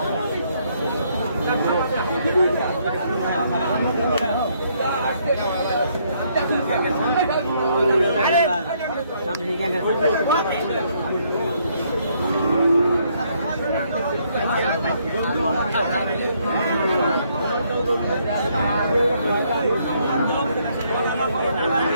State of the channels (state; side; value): inverted; both; correlation -0.70